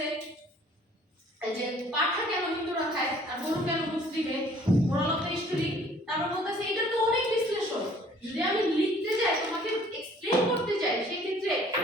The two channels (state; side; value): normal; both; correlation 0.56